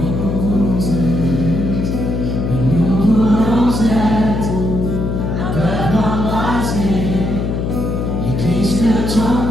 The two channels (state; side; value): noise; left; hum, 1 dB below the sound